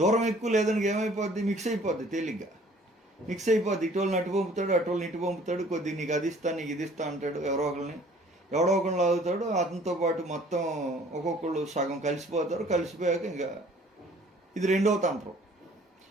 ఎక్కువ లేదని ఏమైపోద్ది? మిక్స్ అయిపోద్ది, తేలిగ్గా మిక్స్ అయిపోద్ది. ఇటోళ్ళని అటు పంపుతాడు, అటోళ్ళని ఇటు పంపుతాడు. కొద్దిగా నీకు అది ఇస్తా, నీకు ఇది ఇస్తా అంటాడు. ఎవరో ఒకరిని లాగుతాడు. అతనితో పాటు మొత్తం ఒక్కొక్కళ్ళు సగం కలిసిపోతారు. కలిసిపోయాక ఇంకా ఇది రెండవ తంత్రం.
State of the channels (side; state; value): both; normal; correlation 0.54